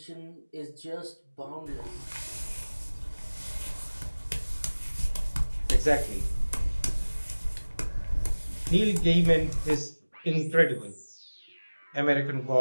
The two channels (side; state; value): both; inverted; correlation -1.00